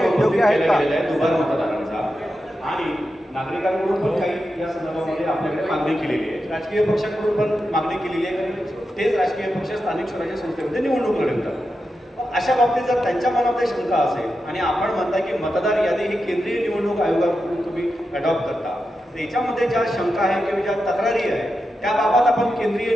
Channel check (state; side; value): normal; both; correlation 0.89